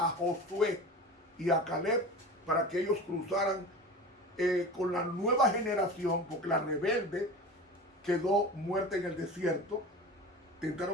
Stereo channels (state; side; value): normal; both; correlation 0.33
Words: Josué y a Caleb para que ellos cruzaran con la nueva generación, porque la rebelde quedó muerta en el desierto.